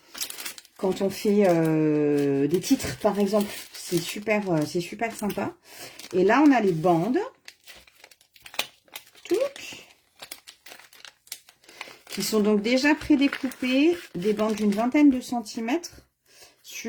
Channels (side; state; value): both; identical; correlation 1.00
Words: titres, par exemple. C'est super sympa. Et là, on a les bandes. Qui sont donc déjà prédécoupées, des bandes d'une vingtaine de centimètres